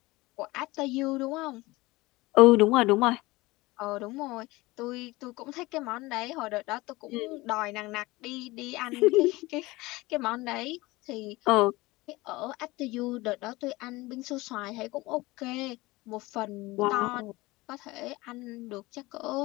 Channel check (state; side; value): quieter; right; 21.0 dB